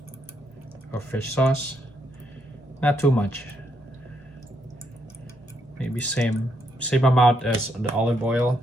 of fish sauce. Not too much. Maybe same amount as the olive oil.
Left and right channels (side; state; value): both; normal; correlation 0.76